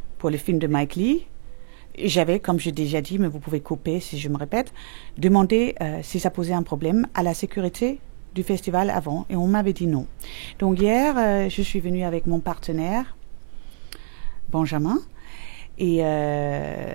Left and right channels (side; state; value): left; silent; digital silence